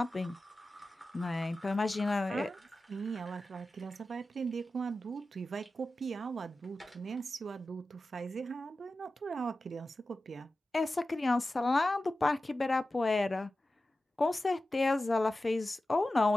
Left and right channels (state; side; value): normal; both; correlation 0.94